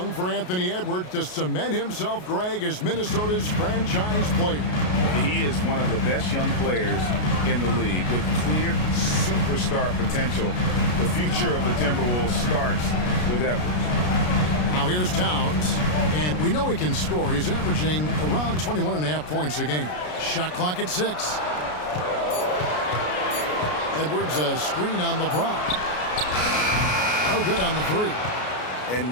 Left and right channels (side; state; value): right; late; 33 ms